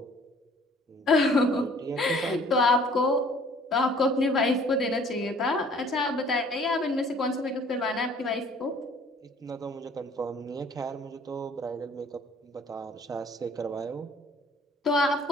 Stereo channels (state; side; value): normal; both; correlation 0.55